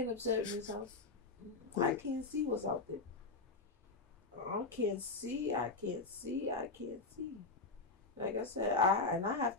upset in this house. I can't see what's out there. I can't see. Like I said, I have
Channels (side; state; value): right; quieter; 3.7 dB